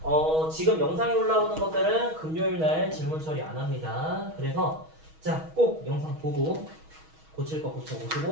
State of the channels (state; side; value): late; left; 6.3 ms